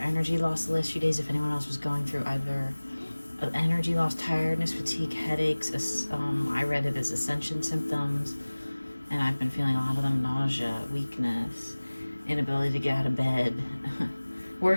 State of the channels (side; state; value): both; inverted; correlation -1.00